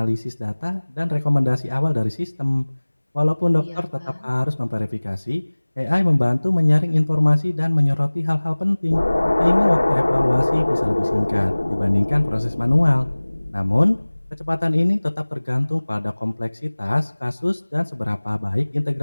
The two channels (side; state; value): both; inverted; correlation -1.00